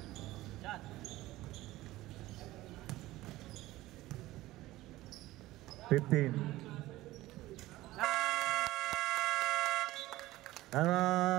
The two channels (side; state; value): left; quieter; 17.2 dB